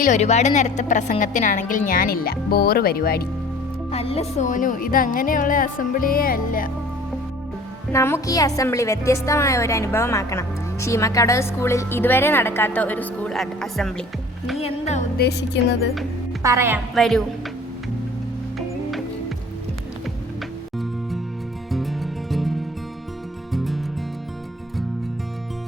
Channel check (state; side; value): normal; both; correlation 0.48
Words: ഒരുപാട് നേരത്തെ പ്രസംഗത്തിനാണെങ്കിൽ ഞാനില്ല. ബോറ് പരിപാടി. അല്ല സോനു, ഇതങ്ങനെയുള്ള അസംബ്ലിയേ അല്ല. നമുക്ക് ഈ അസംബ്ലി വ്യത്യസ്തമായ ഒരു അനുഭവമാക്കണം. ശീമക്കടവ് സ്കൂളിൽ ഇതുവരെ നടക്കാത്ത ഒരു സ്കൂൾ അസംബ്ലി. നീ എന്താ ഉദ്ദേശിക്കുന്നത്? പറയാം, വരൂ.